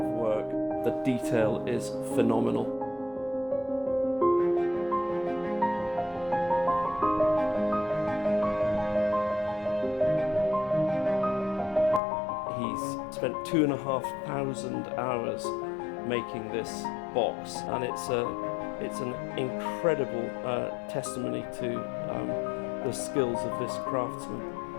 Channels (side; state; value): right; drops out; at 12.0 s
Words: of work. The detail is phenomenal. He's spent 2,500 hours making this box, and it's an incredible testimony to the skills of this craftsman.